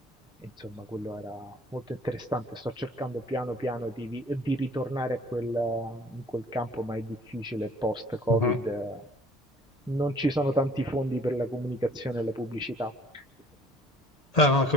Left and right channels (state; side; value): normal; both; correlation 0.54